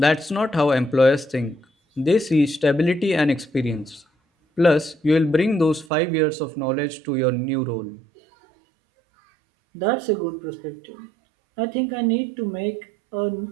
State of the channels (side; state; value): left; drops out; at 5.9 s